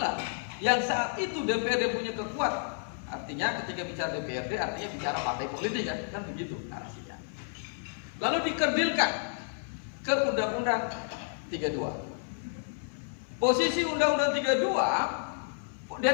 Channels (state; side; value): silent; right; 57 dB below the other